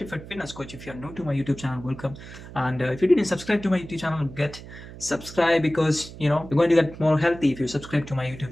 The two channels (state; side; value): noise; right; hum, 15 dB below the sound